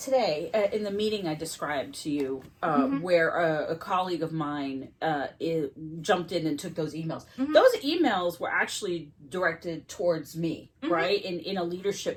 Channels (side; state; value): both; identical; correlation 1.00